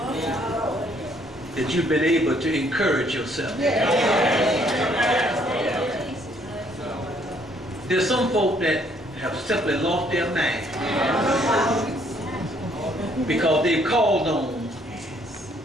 that you've been able to encourage yourself. There's some folk that have simply lost their mind because they've called on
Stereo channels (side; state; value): both; normal; correlation 0.65